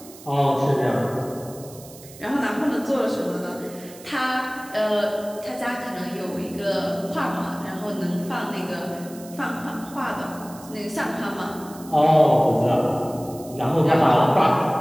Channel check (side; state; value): right; noise; hiss, 19 dB below the sound